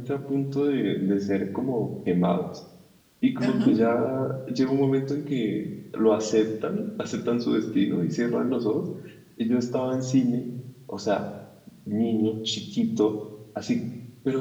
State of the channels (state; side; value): identical; both; correlation 1.00